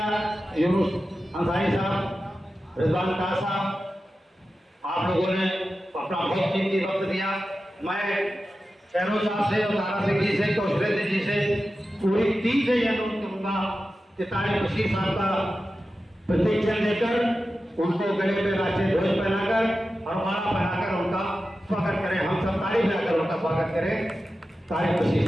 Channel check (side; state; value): both; normal; correlation 0.93